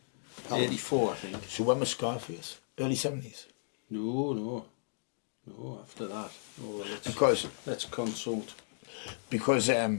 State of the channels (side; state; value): right; silent; digital silence